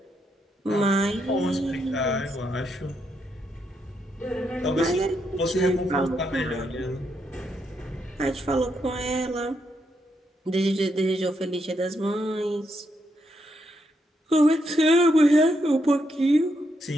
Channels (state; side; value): normal; both; correlation 0.79